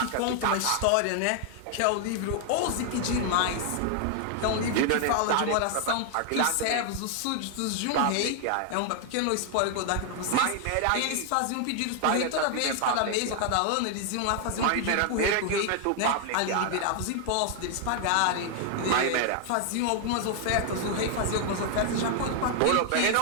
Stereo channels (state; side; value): different; both; correlation 0.00